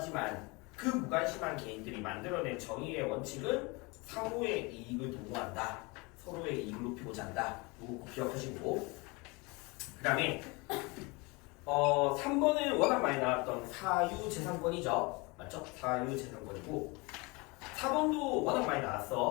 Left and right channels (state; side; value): quieter; right; 26.9 dB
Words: 그 무관심한 개인들이 만들어낸 정의의 원칙은 상호의 이익을 도모한다, 서로의 이익을 높이고자 한다. 이거 기억하시고, 그 다음에 3번은 워낙 많이 나왔던 사유재산권이죠, 맞죠? 사유재산권이고 4번도 워낙 많이